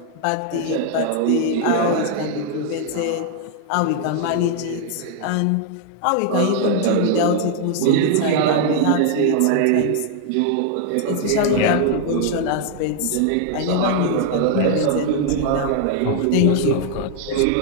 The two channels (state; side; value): different; both; correlation 0.00